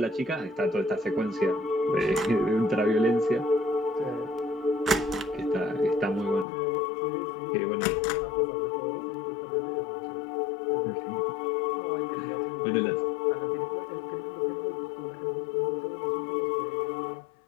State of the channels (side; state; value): right; drops out; at 6.5 s